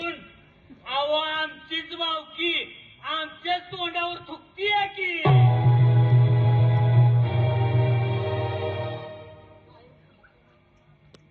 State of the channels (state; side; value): identical; both; correlation 1.00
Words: अहो आमचीच भावकी आमच्याच तोंडावर थुकतीये की.